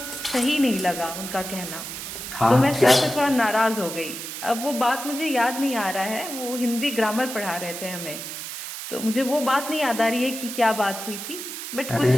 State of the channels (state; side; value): noise; right; hiss, 8 dB below the sound